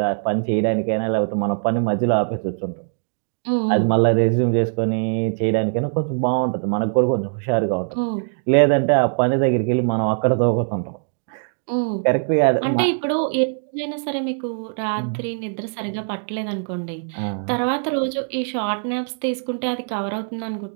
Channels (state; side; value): silent; left; digital silence